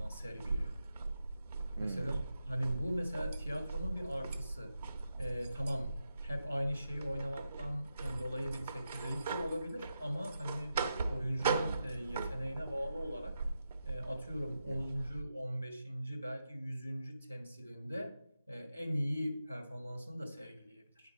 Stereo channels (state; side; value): inverted; both; correlation -0.87